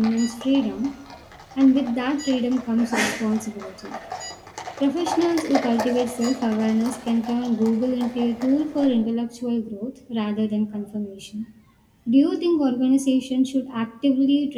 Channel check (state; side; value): identical; both; correlation 1.00